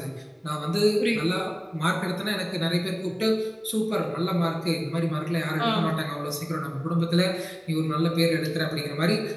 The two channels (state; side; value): identical; both; correlation 1.00